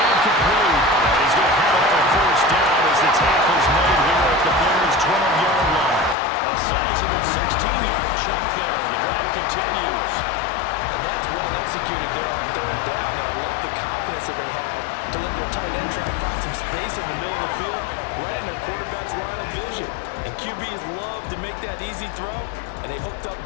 complete. He's going to have a first down as the tackle's made here at the Bears' 12-yard line. A sizable 16-yard chunk there. The drive continues. And that's well executed there on 3rd down. And I love the confidence that they had to let their tight end try and find some space in the middle of the field, right in their quarterback's line of vision. And QBs love to make that easy throw, and they hooked up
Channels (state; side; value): drops out; right; at 6.2 s